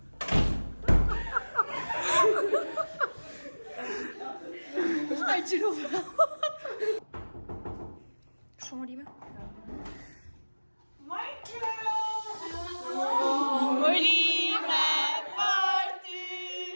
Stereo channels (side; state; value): both; inverted; correlation -1.00